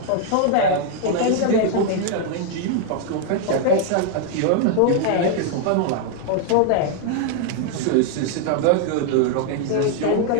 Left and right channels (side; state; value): both; different; correlation 0.00